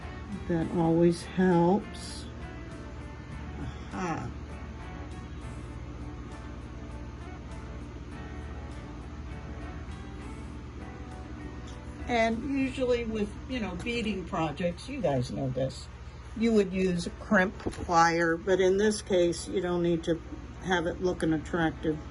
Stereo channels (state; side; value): identical; both; correlation 1.00